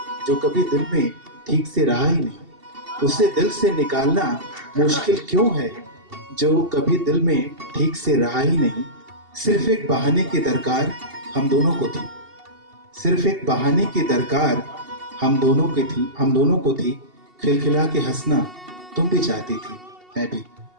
जो कभी दिल में ठीक से रहा ही नहीं। उसे दिल से निकालना मुश्किल क्यों है, जो कभी दिल में ठीक से रहा ही नहीं। सिर्फ एक बहाने की दरकार हम दोनों को थी, सिर्फ एक बहाने की दरकार हम दोनों को थी। खिलखिला के हंसना तुम भी चाहती थी, मैं भी।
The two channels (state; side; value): late; left; 2.7 ms